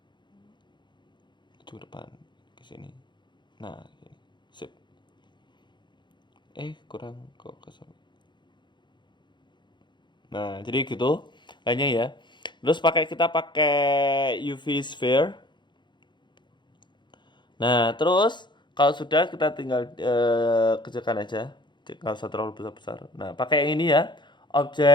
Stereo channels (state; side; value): late; right; 0.22 ms